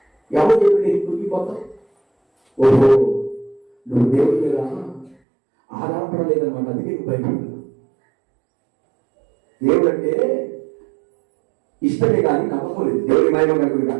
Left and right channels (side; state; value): left; drops out; at 5.2 s